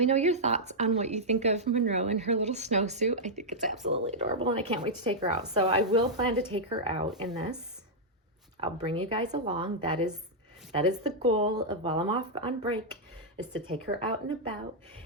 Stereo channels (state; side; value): normal; both; correlation -0.06